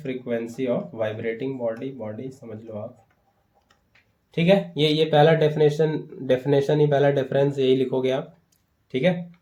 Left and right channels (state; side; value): identical; both; correlation 1.00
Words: of vibrating body समझ लो आप। ठीक है, ये पहला डेफिनेशन ही, पहला डिफरेंस यही लिखोगे आप। ठीक है,